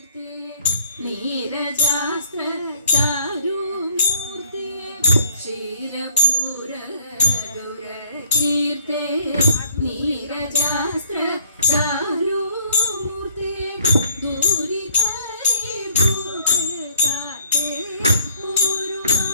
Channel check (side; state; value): both; inverted; correlation -0.60